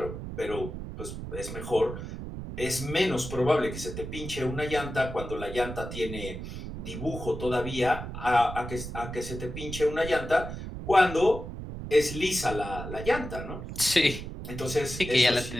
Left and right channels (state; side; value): noise; right; rumble, 8 dB below the sound